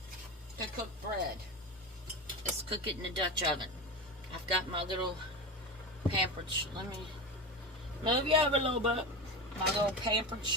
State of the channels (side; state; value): both; normal; correlation 0.23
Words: to cook bread is cook it in a Dutch oven. I've got my little pampered, let me move you over a little bit. My little pampered